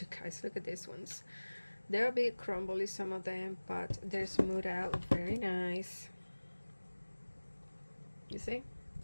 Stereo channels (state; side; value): inverted; both; correlation -1.00